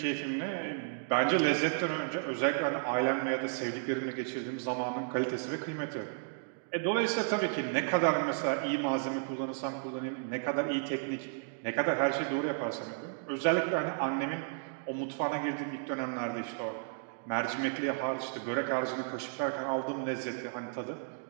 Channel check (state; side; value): silent; left; digital silence